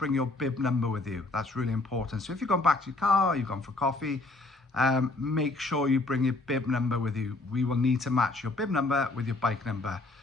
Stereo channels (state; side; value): quieter; right; 3.1 dB